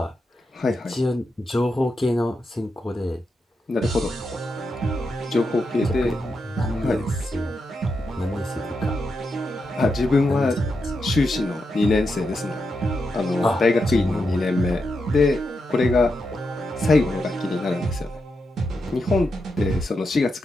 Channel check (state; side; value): normal; both; correlation 0.86